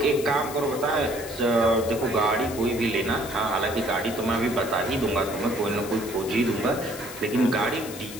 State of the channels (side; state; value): left; noise; hiss, 13 dB below the sound